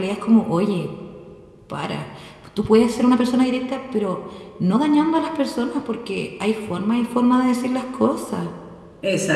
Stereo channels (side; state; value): both; identical; correlation 1.00